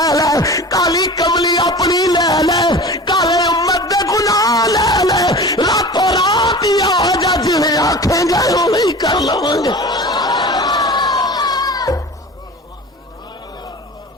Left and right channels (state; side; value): normal; both; correlation 0.36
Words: لے کالی کملی اپنی لے لے کالے امت دے گناہ لے لے راتوں رات ہی آ جا جویں آکھیں گے اوہی کر لواں گے